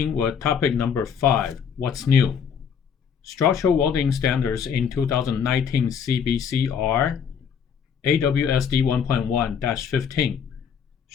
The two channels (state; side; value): quieter; right; 7.2 dB